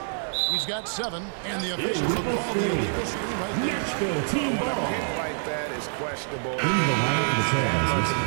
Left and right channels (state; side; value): silent; left; digital silence